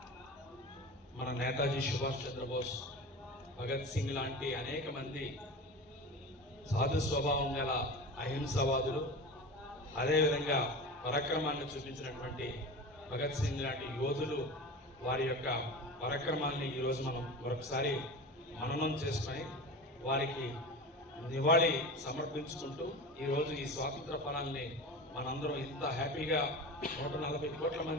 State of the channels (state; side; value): normal; both; correlation 0.30